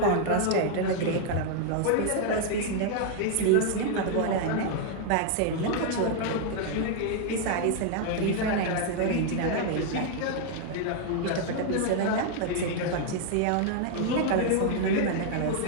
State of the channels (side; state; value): both; different; correlation 0.00